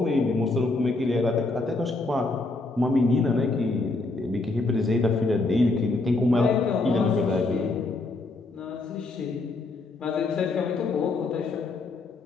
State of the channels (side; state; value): right; quieter; 3.3 dB